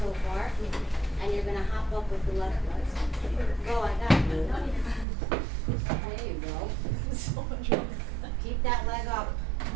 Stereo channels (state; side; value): drops out; left; at 5.1 s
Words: far, and you're gonna hop up with the left leg. Go, I got you. There you go. Keep that